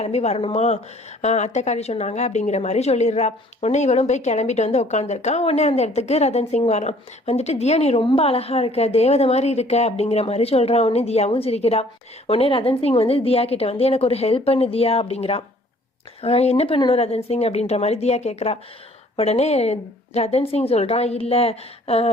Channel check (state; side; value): normal; both; correlation 0.57